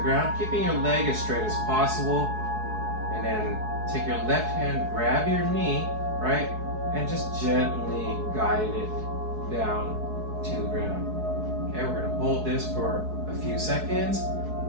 ground, keeping your leg as straight as possible, and then take your left hand, grab your knee, right? And just gently guide it down to the ground. Okay, we're gonna hold this for a few seconds,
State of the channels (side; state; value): left; late; 4.7 ms